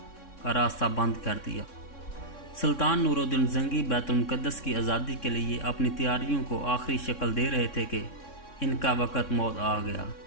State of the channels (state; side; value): late; right; 3.6 ms